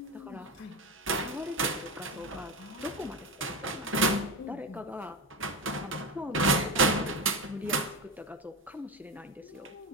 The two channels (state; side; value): normal; both; correlation 0.19